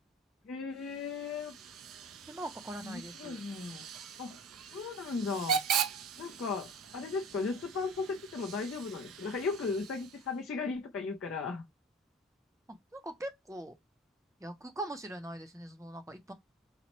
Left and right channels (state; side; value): normal; both; correlation 0.38